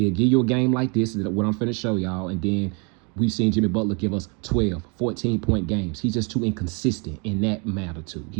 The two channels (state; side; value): quieter; left; 33.6 dB